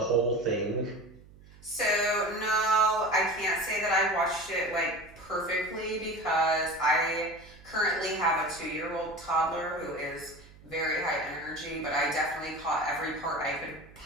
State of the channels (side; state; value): right; noise; hum, 22 dB below the sound